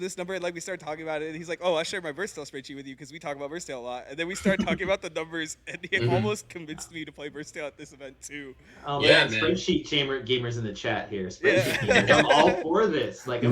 number, and like we started talking about it, and he's like, oh, I'll share my Versatile spreadsheet with you because we talk about Versatile a lot. And then we started talking about the numbers, and he almost convinced me to play Versatile at this event too. Oh Yeah, man, man. Spreadsheet gamers in the chat here. Spreadsheet gamers, I'm all for this. Like I'm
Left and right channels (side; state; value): both; identical; correlation 1.00